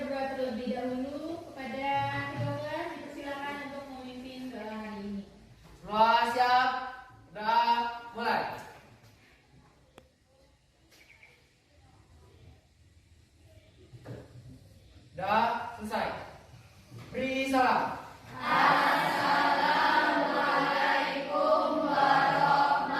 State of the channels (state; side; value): identical; both; correlation 1.00